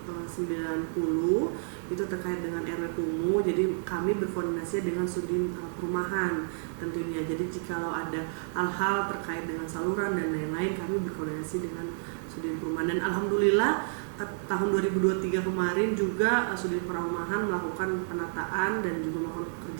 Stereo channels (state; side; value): silent; left; digital silence